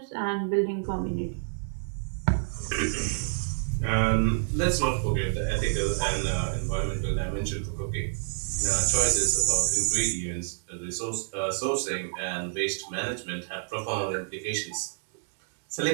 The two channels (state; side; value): silent; left; digital silence